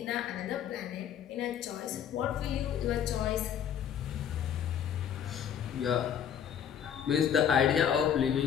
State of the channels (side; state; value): right; quieter; 8.9 dB